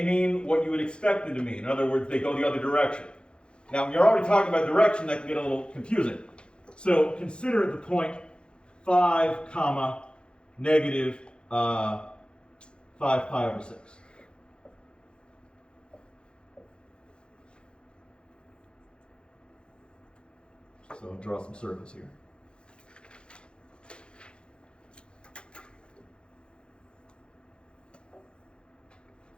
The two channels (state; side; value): late; right; 0.054 ms